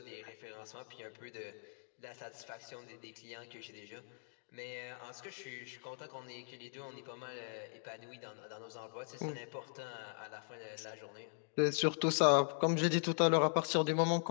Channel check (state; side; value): silent; right; digital silence